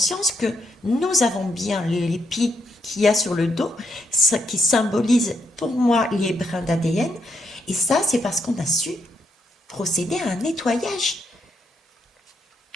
que nous avons bien l'épi qu'il y a sur le dos, qui symbolise pour moi les brins d'ADN. Et ça, c'est parce qu'on a su procéder à un nettoyage.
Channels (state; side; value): normal; both; correlation 0.77